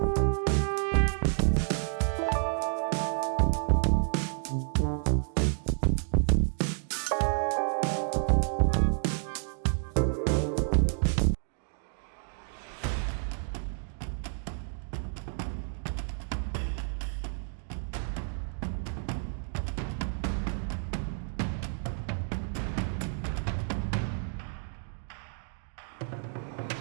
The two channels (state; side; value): silent; left; 58 dB below the other